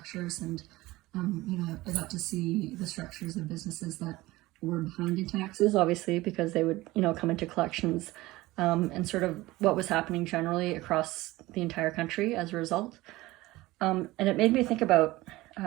and I got to see the structures of businesses that were behind in taxes, obviously, because they would, come into collections, and sort of what was happening generally across the entire country as a result. And it made me think about,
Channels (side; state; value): left; quieter; 19.0 dB